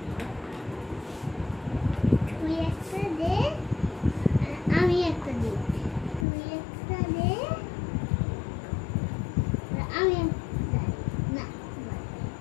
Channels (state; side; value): drops out; right; at 6.2 s